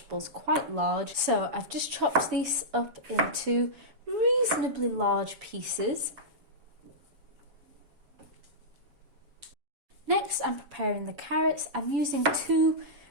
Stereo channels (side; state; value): left; late; 7.1 ms